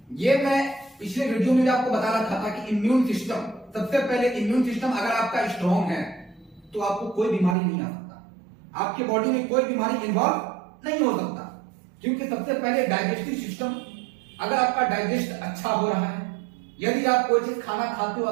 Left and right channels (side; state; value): left; drops out; at 7.6 s